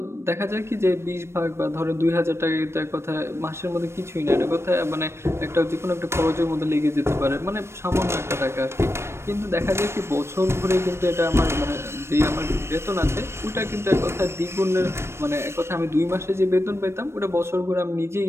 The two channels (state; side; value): late; left; 0.13 ms